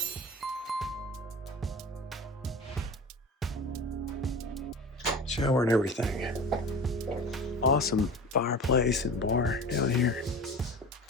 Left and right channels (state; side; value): normal; both; correlation 0.34